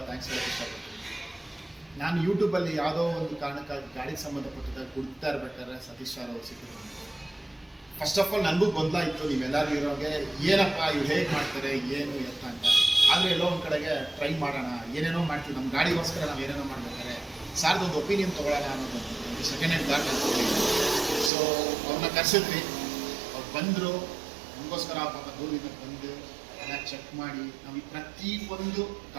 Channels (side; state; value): left; drops out; at 21.3 s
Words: ಥ್ಯಾಂಕ್ಸ್ ಹೇಳೋಕ್ಕೆ ಇಷ್ಟಪಡ್ತೀನಿ. ನಾನು ಯೂಟ್ಯೂಬಲ್ಲಿ ಯಾವುದೋ ಒಂದು ಕಾರಣಕ್ಕಾಗಿ ಗಾಡಿಗೆ ಸಂಬಂಧಪಟ್ಟಿದ್ದಾಗ ಹುಡುಕ್ತಾ ಇರ್ಬೇಕಾದ್ರೆ ಸತೀಶ್ ಸರ್ ಅವರು ಸಿಕ್ಕಿದ್ರು. ಫಸ್ಟ್ ಆಫ್ ಆಲ್ ನನಗೂ ಗೊಂದಲ ಇತ್ತು, ನೀವೆಲ್ಲರೂ ಇರೋಗೆ ಏನಪ್ಪ ಇವ್ರು ಹೇಗೆ ಮಾಡ್ತಾರೆ ಏನು ಎತ್ತ ಅಂತ. ಆದರೆ ಎಲ್ಲೋ ಒಂದು ಕಡೆಗೆ ಟ್ರೈ ಮಾಡೋಣ, ಏನೇನೋ ಮಾಡ್ತೀವಿ, ನಮ್ಮ ಗಾಡಿಗೋಸ್ಕರ ನಾವು ಏನೇನೋ ಮಾಡ್ಬೇಕಾದ್ರೆ ಸಾರ್ದೊಂದು ಒಪಿನಿಯನ್ ತೊಗೊಳ್ಳೋಣ ಅನ್ನೋದು ಸೆಕೆಂಡ್ ಹ್ಯಾಂಡ್ ಗಾಡಿ ಅಂತ ಹೇಳಿ. ಸೊ ಅವ್ರನ್ನ ಕರೆಸಿದ್ವಿ, ಅವ್ರು ಬಂದರು. ನಮಗೋಸ್ಕರ ಪಾಪ ದೂರದಿಂದ ಬಂದು ಎಲ್ಲ ಚೆಕ್ ಮಾಡಿ ನಾವು ಪ್ರತಿಯೊಂದು